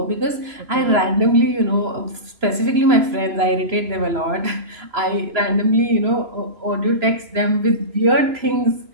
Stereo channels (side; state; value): left; late; 3.0 ms